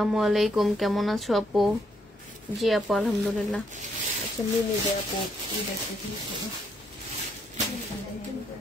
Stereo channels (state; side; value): normal; both; correlation 0.74